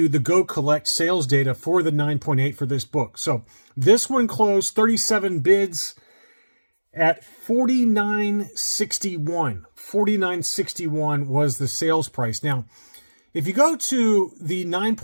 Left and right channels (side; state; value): both; inverted; correlation -1.00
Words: the Go Collect sales data for the 9.8 for this book. So this one closed 37 bids at $49.61. $49.61 was the sales price. Now, if you go to the